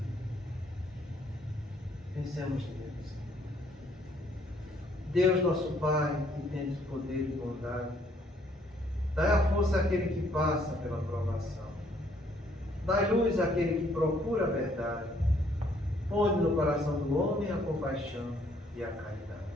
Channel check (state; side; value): normal; both; correlation 0.66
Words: Pensemos neles. Deus nosso Pai, que tens poder e bondade, dai a força àquele que passa pela provação. Dai luz àquele que procura a verdade. Põe no coração do homem a compaixão e a caridade.